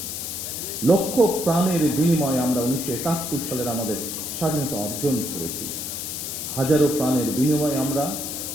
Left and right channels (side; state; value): left; noise; hiss, 5 dB below the sound